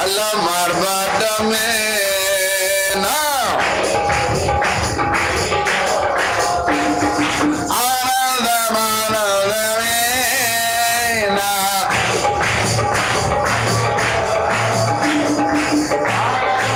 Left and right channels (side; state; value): right; noise; rumble, 30 dB below the sound